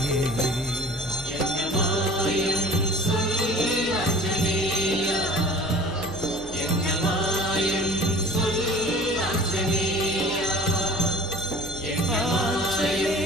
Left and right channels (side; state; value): both; normal; correlation 0.45